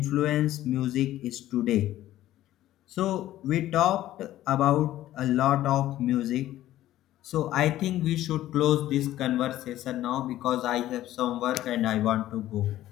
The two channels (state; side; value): quieter; right; 14.0 dB